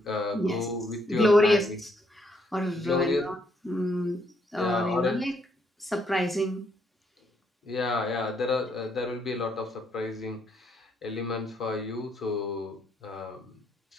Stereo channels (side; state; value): both; normal; correlation 0.72